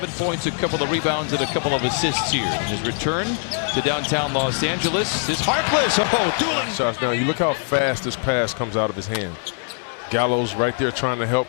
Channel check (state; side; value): silent; right; 59 dB below the other